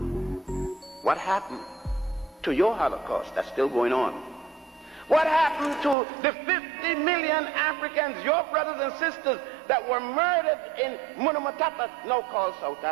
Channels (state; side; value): drops out; left; at 6.0 s